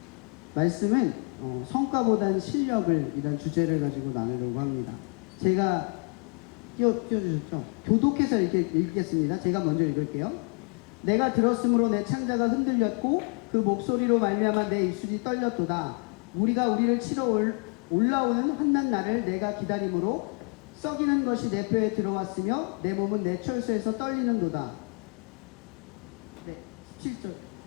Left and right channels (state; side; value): quieter; right; 38.1 dB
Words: 말씀은 성과보다는 실력을 이런 주제를 가지고 나누려고 합니다. 제가 띄워주셨죠. 교독해서 이렇게 읽겠습니다. 제가 먼저 읽을게요. 내가 들었으므로 내 창자가 흔들렸고 그 목소리로 말미암아 내 입술이 떨렸도다. 우리가 우리를 치러 올라오는 한낱 날을 내가 기다림으로 썩이는 것이 내 뼈에 들어왔으며 내 몸은 내 철수에서 떨리는도다.